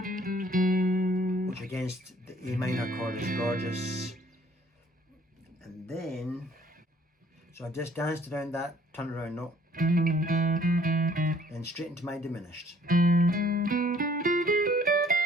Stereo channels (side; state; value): both; normal; correlation 0.58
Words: Which against the A minor chord is gorgeous. And then, so I just danced around that turnaround note, then straight into my diminished.